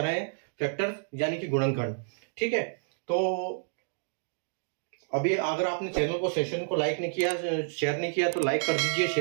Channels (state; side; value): silent; left; digital silence